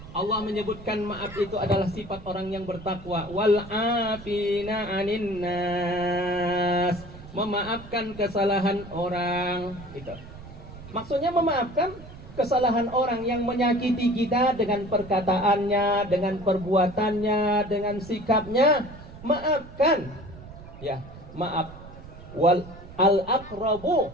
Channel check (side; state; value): right; noise; rumble, 16 dB below the sound